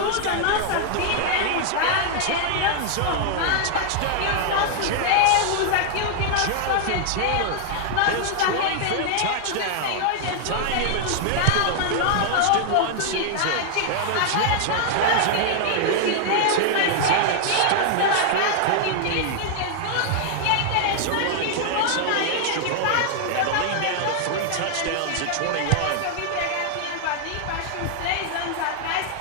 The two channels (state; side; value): different; both; correlation 0.00